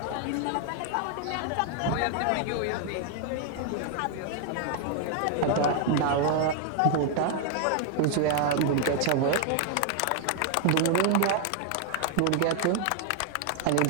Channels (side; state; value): both; different; correlation 0.00